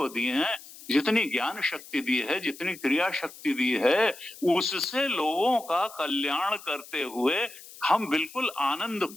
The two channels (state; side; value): noise; left; hiss, 18 dB below the sound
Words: दी हैं, जितनी ज्ञान शक्ति दी है, जितनी क्रिया शक्ति दी है, उससे लोगों का कल्याण करते हुए हम बिल्कुल आनंद